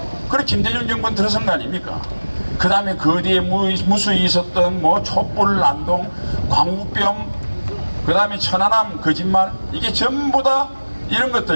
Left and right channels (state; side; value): inverted; both; correlation -1.00